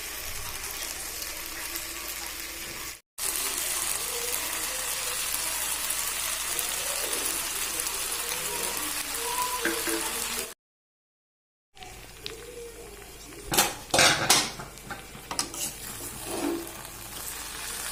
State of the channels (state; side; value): identical; both; correlation 1.00